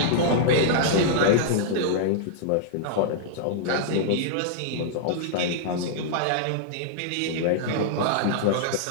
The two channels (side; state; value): both; different; correlation -0.01